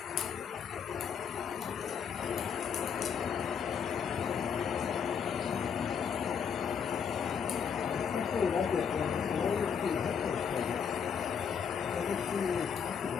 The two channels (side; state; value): right; quieter; 7.1 dB